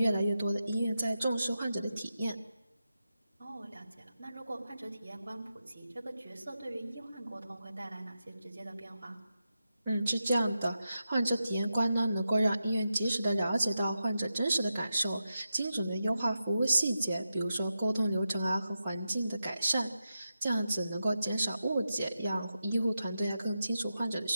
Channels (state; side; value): inverted; both; correlation -0.89